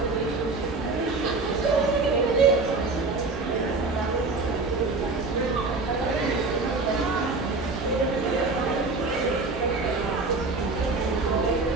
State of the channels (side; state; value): left; quieter; 3.7 dB